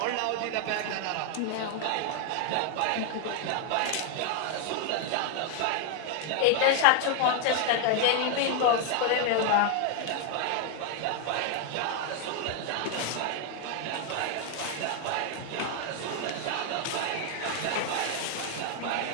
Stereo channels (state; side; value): different; both; correlation 0.00